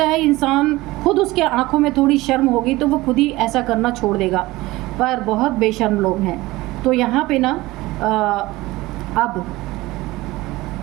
है इंसान खुद, उसके आंखों में थोड़ी शर्म होगी तो वो खुद ही ऐसा करना छोड़ देगा, पर बहुत बेशर्म लोग हैं। तो यहाँ पे ना अब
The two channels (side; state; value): left; quieter; 19.5 dB